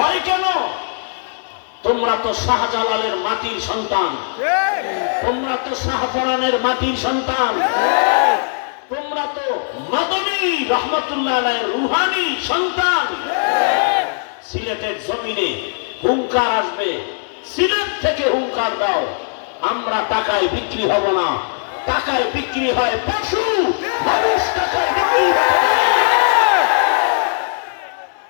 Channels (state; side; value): silent; right; digital silence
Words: কেন? তোমরা তো শাহজালালের মাটির সন্তান, তোমরা তো শাহপরানের মাটির সন্তান, তোমরা তো মাদানী রহমাতুল্লাহ আলাইহির রুহানি সন্তান। সিলেটের জমিনে হুঙ্কার আসবে, সিলেট থেকে হুঙ্কার দাও, আমরা টাকায় বিক্রি হব না। টাকায় বিক্রি হয় পশু, মানুষ টাকায় বিক্রি হয়।